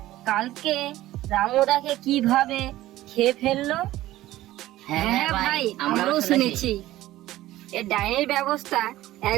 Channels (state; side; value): quieter; left; 15.6 dB